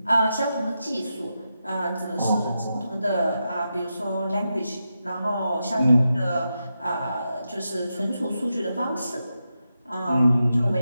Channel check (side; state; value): both; inverted; correlation -0.87